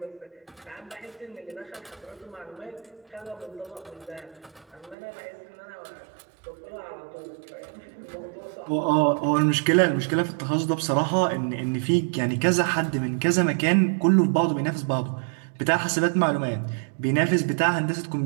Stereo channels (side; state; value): left; drops out; at 5.0 s